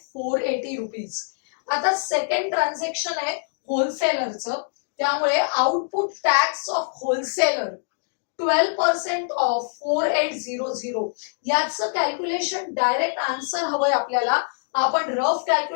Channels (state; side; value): silent; right; digital silence